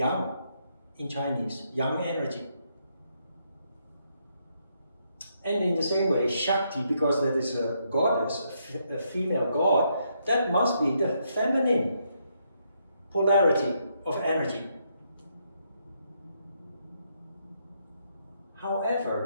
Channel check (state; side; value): inverted; both; correlation -0.76